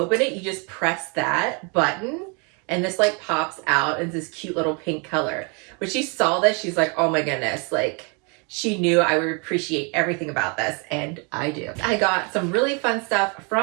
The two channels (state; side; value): quieter; left; 34.1 dB